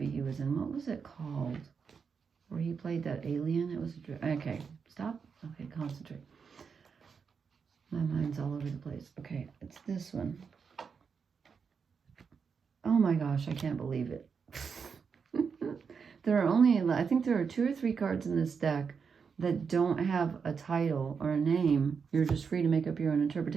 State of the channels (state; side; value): quieter; left; 5.9 dB